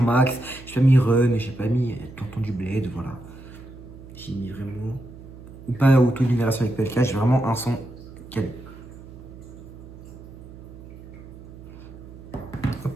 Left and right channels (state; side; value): noise; right; hum, 16 dB below the sound